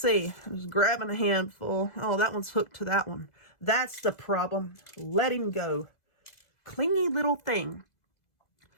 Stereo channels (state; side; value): late; right; 2.0 ms